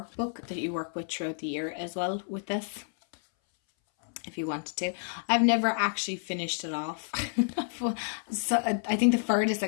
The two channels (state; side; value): silent; right; 58 dB below the other